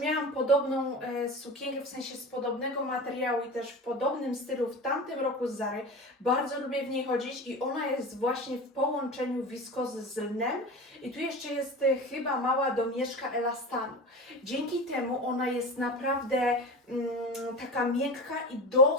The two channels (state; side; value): normal; both; correlation 0.30